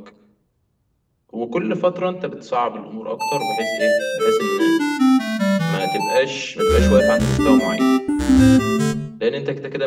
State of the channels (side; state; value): both; identical; correlation 1.00